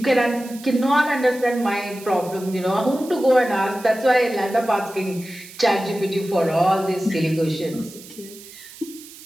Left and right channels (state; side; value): noise; right; hiss, 18 dB below the sound